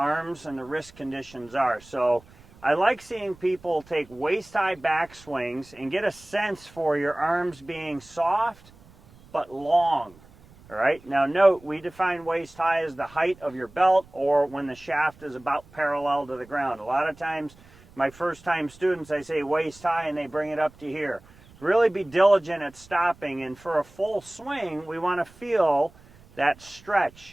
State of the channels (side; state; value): right; noise; rumble, 25 dB below the sound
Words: and the wrist conditions are. So I like seeing people take waist-high backswings and get a sense for your arms being soft but long. All right, now note, we define waist-high as the height of your belt or when the shaft is about parallel to the ground. A lot of times, my first-time students, I say waist-high and they bring it up to here. Really be diligent at stopping, and for a full swing, we want to feel that